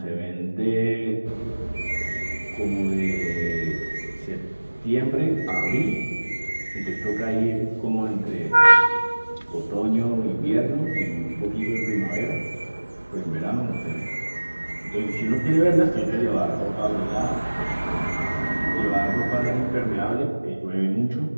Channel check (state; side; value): inverted; both; correlation -1.00